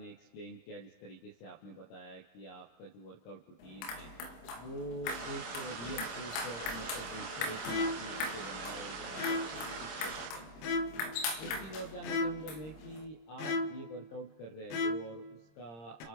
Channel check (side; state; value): right; late; 26 ms